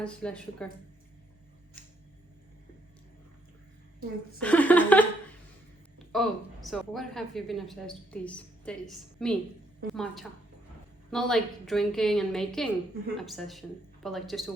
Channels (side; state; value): both; normal; correlation 0.72